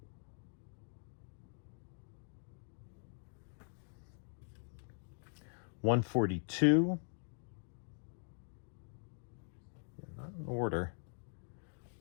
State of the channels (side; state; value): right; silent; digital silence